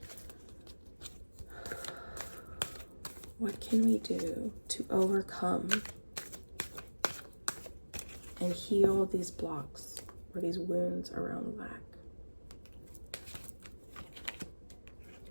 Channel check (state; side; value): inverted; both; correlation -1.00